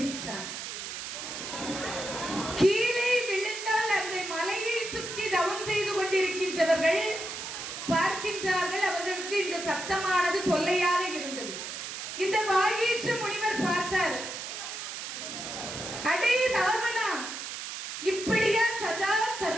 கீழே விழுந்தால் அந்த மலையை சுற்றி தவம் செய்து கொண்டிருக்கின்றவர்கள் பார்க்கின்றார்கள். அவர்களுக்கு இந்த சத்தமானது தொல்லையாக இருந்தது. இந்த வாகீஷ முனிவர் பார்த்தார். அடே ராவணா, இப்படியா சதா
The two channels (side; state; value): right; noise; hiss, 7 dB below the sound